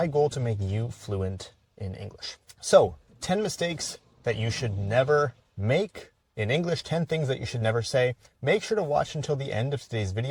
goal to make you fluent in English. So, 10 mistakes that you should never make in English, 10 things that you should never say. Make sure to watch until the end of today's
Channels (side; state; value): both; identical; correlation 1.00